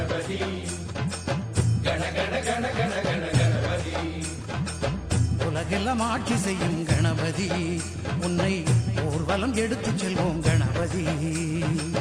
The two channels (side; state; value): both; identical; correlation 1.00